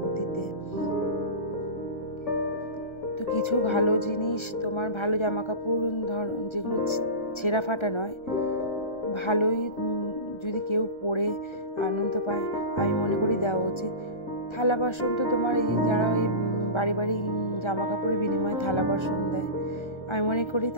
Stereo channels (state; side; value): late; right; 1.3 ms